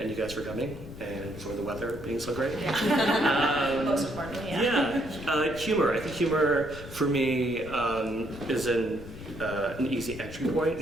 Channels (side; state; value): left; noise; rumble, 13 dB below the sound